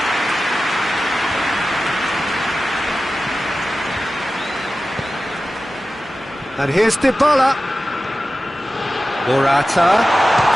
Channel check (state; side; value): normal; both; correlation 0.94